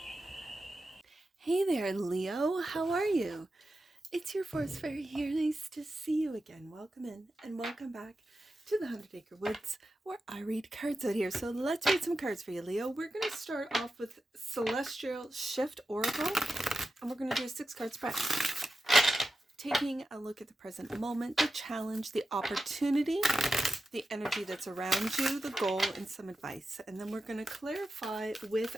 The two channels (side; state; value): both; normal; correlation 0.91